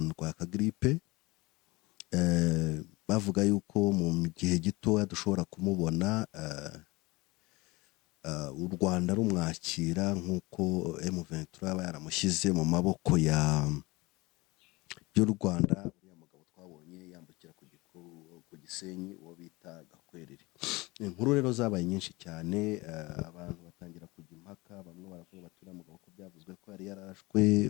ndwaye akagripe. Bavuga yuko mu gihe gitoya dushobora kumubona u Rwanda rumwakira nk'uko M23 aba yaramushyize mu maboko y'u Rwanda. Uriya mugabo twabonye yambukira ku Gisenyi uwo bita Gakwerere. Inkuru rero zabaye nyinshi cyane, abantu batangira kujya impaka, bamwe baravuga bati uriya mugabo ko byavuzwe ko yari yarashwe,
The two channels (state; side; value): quieter; right; 22.9 dB